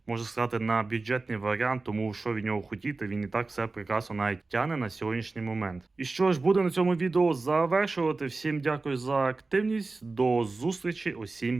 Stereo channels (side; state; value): left; quieter; 3.6 dB